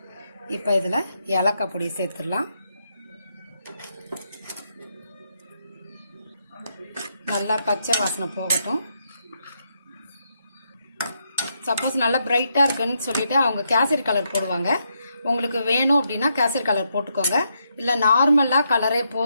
இப்போ இதில் ஏலக்காய் பொடி சேர்த்துடலாம். நல்லா பச்சை வாசனை போகட்டும். சப்போஸ் நல்லா பிரைட்டா இருக்குன்னு சொல்லிட்டு அவங்க கேசரி கலர் போடுவாங்க. உங்களுக்கு வேணும் அப்படின்னா கேசரி கலர் போட்டுக்கோங்க. இல்லை நார்மலா கலரே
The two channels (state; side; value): inverted; both; correlation -0.79